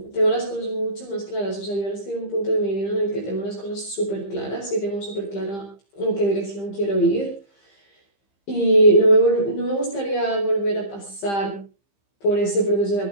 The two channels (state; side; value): late; right; 15 ms